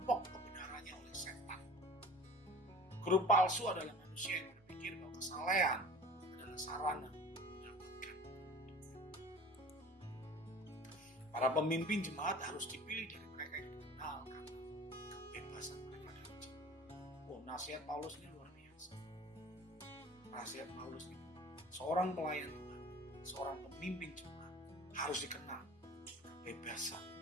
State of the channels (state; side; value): normal; both; correlation 0.41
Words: kebenarannya oleh setan. Guru palsu adalah manusia yang berpikir bahwa kesalehan adalah sarana mendapatkan. Para pemimpin jemaat harus dipilih dari mereka yang dikenal karena kebebasan mereka dari jemaat. Nasihat Paulus ini luar biasa. Nasihat Paulus ini, seorang pelayan Tuhan, seorang pemimpin jemaat harus dikenal kebebasan